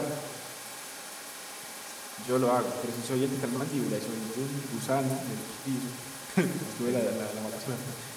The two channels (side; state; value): both; identical; correlation 1.00